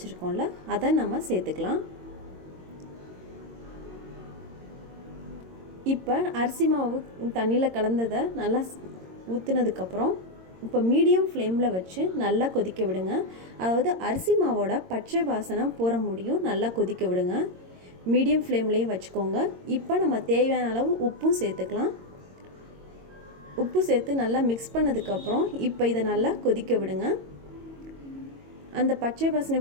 அதை நம்ம சேர்த்துக்கலாம். இப்போ அரிசி மாவு தண்ணியில் கலந்ததை நல்லா ஊற்றுனதுக்கப்புறம் இப்போ மீடியம் ஃப்ளேமில் வச்சு நல்லா கொதிக்க விடுங்க. அதாவது அரிசி மாவோட பச்சை வாசனை போகிற முடியும் நல்லா கொதிக்க விடுங்க. மீடியம் ஃப்ளேம்லேயே வச்சுக்கோங்க. இப்போ நம்ம தேவையான அளவு உப்பும் சேர்த்துக்கலாம். உப்பு சேர்த்து நல்லா மிக்ஸ் பண்ணதுக்கப்புறம் இப்போ இதை நல்லா கொதிக்க விடுங்க. அந்த பச்சை வாசனை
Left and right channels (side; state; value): left; late; 22 ms